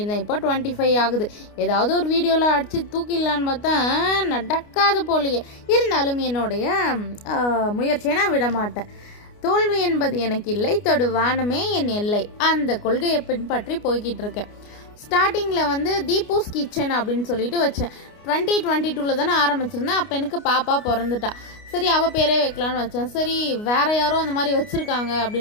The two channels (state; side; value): late; right; 29 ms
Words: இப்போ 25 ஆகுது. ஏதாவது ஒரு வீடியோவில் அடித்து தூக்கிடலான்னு பார்த்தா நடக்காத போலையே. இருந்தாலும் என்னுடைய முயற்சியை நான் விட மாட்டேன். தோல்வி என்பது எனக்கு இல்லை, தொடு வானமே என் எல்லை, அந்த கொள்கையை பின்பற்றி போய்கிட்டு இருக்கேன். ஸ்டார்டிங்கில் வந்து தீபூஸ் கிச்சன் அப்படின்னு சொல்லிட்டு வச்சேன். 2022 தானே ஆரம்பிச்சிருந்தேன். அப்போ எனக்கு பாப்பா பிறந்துட்டா. சரி, அவள் பேரே வைக்கலான்னு வச்சேன். சரி, வேறு யாரோ அந்த மாதிரி வச்சுருக்காங்க